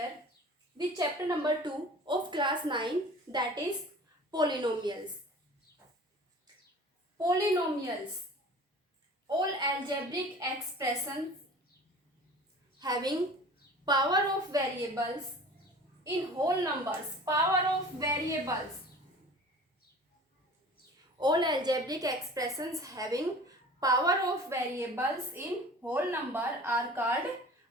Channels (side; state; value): both; normal; correlation 0.42